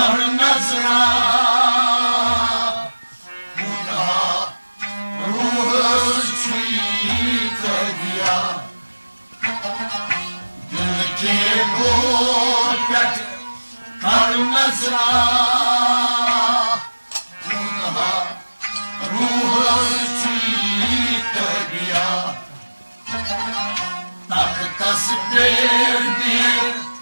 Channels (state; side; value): inverted; both; correlation -1.00